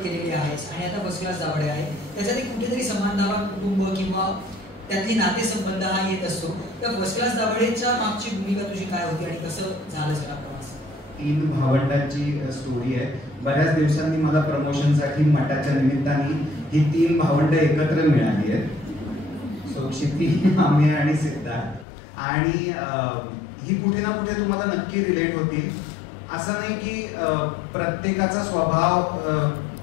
केलेले आहेस आणि आता फर्स्ट क्लास दाभाडे आहे, त्याच्यात कुठेतरी समानधावा कुटुंब किंवा त्यातली नातेसंबंध हा येत असतो. तर फर्स्ट क्लास दाभाडेच्या मागची भूमिका तुझी काय होती आणि कसं झालं सगळा प्रवास? 3 भावंडांची स्टोरी आहे. बऱ्याच दिवसांनी मला प्रमोशनसाठी मठाच्या निमित्ताने ही 3 भावंड एकत्र मिळाली आहेत. सो क्षिती, आम्ही आणि सिद्धार्थ. आणि ही कुठे ना कुठे तुम्हाला नक्की रिलेट होतील. असं नाही की प्रत्येकाचा स्वभाव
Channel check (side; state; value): right; drops out; at 21.9 s